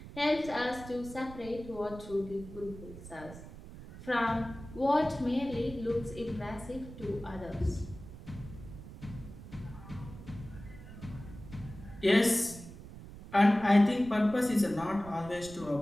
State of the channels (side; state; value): right; noise; rumble, 14 dB below the sound